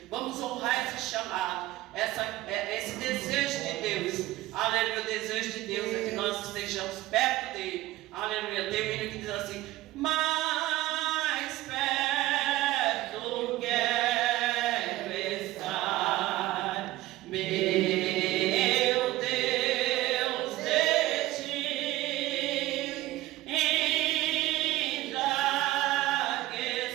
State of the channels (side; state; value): left; quieter; 17.0 dB